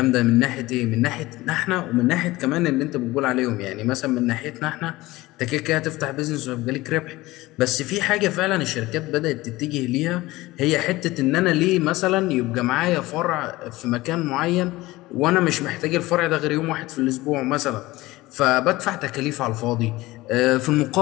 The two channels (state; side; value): quieter; right; 19.2 dB